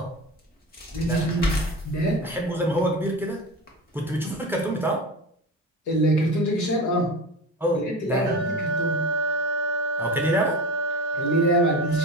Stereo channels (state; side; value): normal; both; correlation 0.28